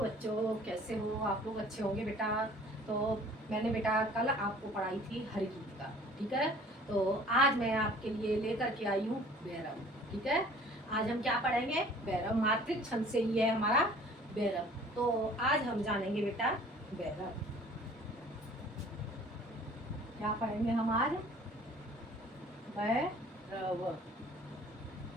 कैसे हो आप लोग? अच्छे होंगे बेटा। तो मैंने बेटा कल आपको पढ़ाई थी हरिगीत। ठीक है। तो आज मैं आपके लिए लेकर के आई हूँ भैरव। ठीक है। आज हम क्या पढ़ेंगे? भैरव। मातृक छंद से ही है हमारा भैरव। तो आज हम जानेंगे बेटा भैरव। क्या पढ़ेंगे हम आज? भैरव।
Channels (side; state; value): both; normal; correlation 0.51